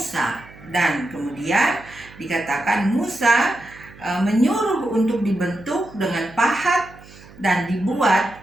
dan kemudian dikatakan Musa menyuruh untuk dibentuk dengan pahat dan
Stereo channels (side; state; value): right; noise; hum, 21 dB below the sound